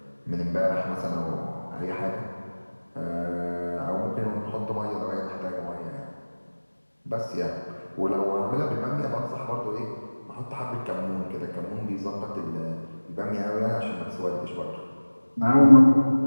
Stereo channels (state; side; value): inverted; both; correlation -1.00